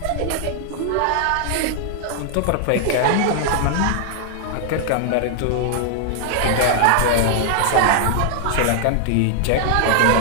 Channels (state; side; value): different; both; correlation 0.00